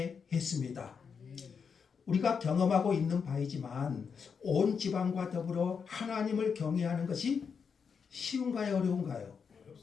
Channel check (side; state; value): right; quieter; 6.2 dB